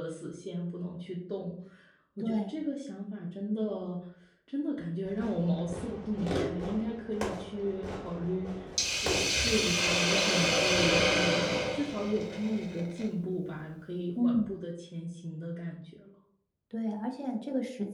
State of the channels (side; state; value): both; identical; correlation 1.00